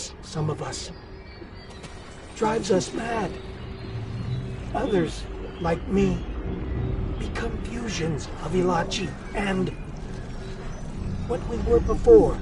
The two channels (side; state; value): both; identical; correlation 1.00